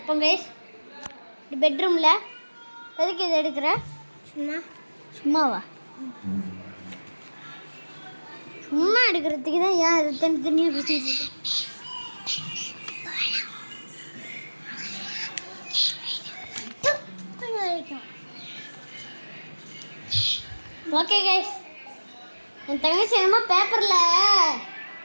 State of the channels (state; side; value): inverted; both; correlation -1.00